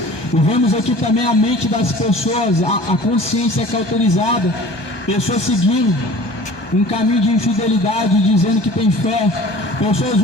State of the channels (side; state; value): right; late; 1.2 ms